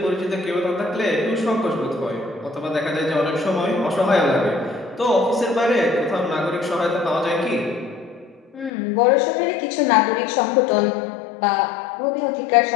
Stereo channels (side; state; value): right; drops out; at 8.7 s